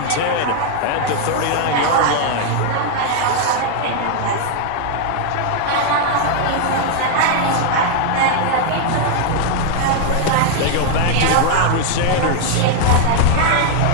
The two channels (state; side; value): different; both; correlation 0.00